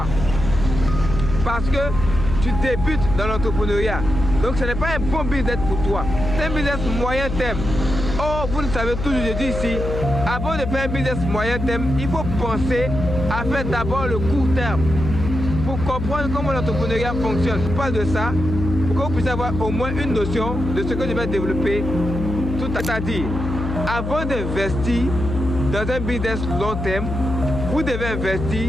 Parce que tu débutes dans l'entrepreneuriat. Donc ce n'est pas un bon business pour toi. C'est un business moyen terme. Oh, vous le savez toujours, je dis ici, avant de faire un business moyen terme, il faut penser à faire d'abord le court terme. Pour comprendre comment l'entrepreneuriat fonctionne. Je parle de ça pour que vous puissiez avoir au moins une notion de ce que je vais développer. Tout à dire, avant d'investir dans un business long terme, vous devez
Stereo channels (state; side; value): noise; left; hum, 5 dB below the sound